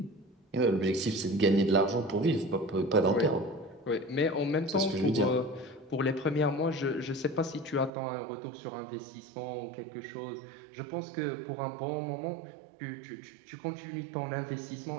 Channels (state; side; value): drops out; left; at 7.9 s